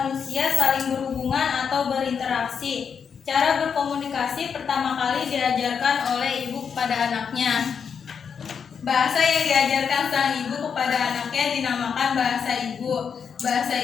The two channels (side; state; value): right; quieter; 6.7 dB